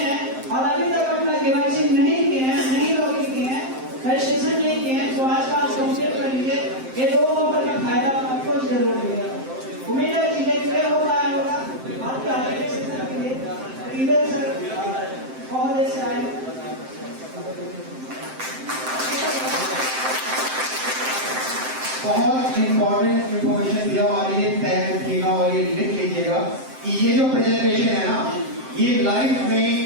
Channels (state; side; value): late; left; 7.7 ms